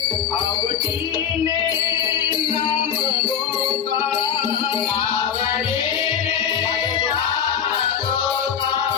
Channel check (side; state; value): right; quieter; 8.1 dB